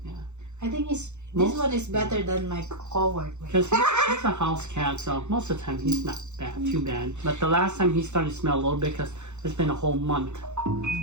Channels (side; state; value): left; late; 0.83 ms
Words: Yeah. I think this one is better than my cohort. Because he's a house cat, so most of the time he's not too bad. But the last time he started to smell a little bit because it's been a whole month.